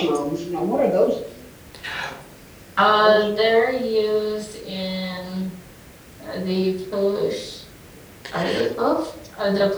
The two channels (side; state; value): both; identical; correlation 1.00